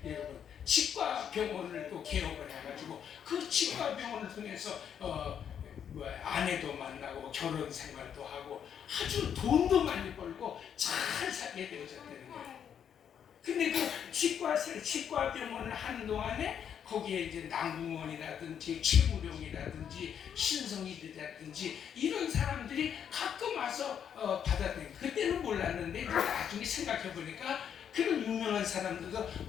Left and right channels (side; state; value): right; quieter; 8.5 dB